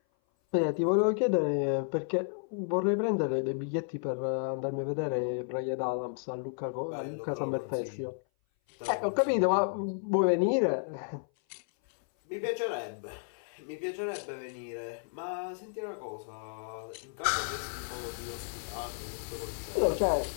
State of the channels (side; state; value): right; silent; 56 dB below the other